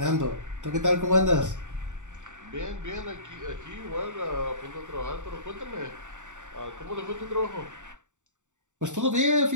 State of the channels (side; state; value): left; late; 0.85 ms